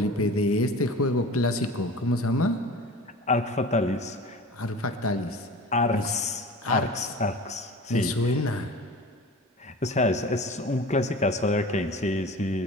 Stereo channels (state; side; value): normal; both; correlation 0.38